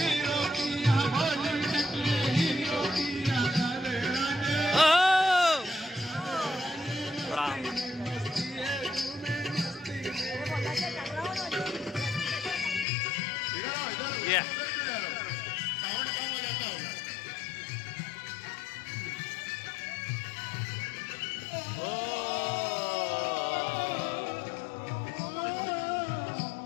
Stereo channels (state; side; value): drops out; right; at 12.9 s